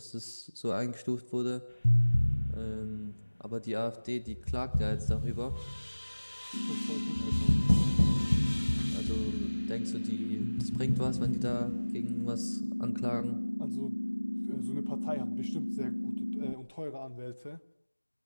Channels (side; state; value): both; inverted; correlation -1.00